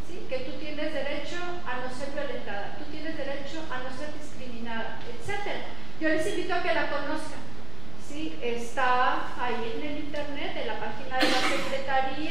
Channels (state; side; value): noise; left; hum, 15 dB below the sound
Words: ¿sí?, que tú tienes derecho a no ser violentada, tú tienes derecho a no ser discriminada, etc. Yo les invito a que la conozcan. ¿Sí? Está ahí en el internet, en la página de la